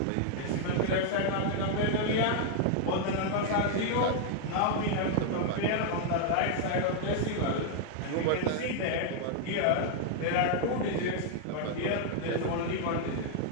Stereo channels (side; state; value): both; different; correlation 0.00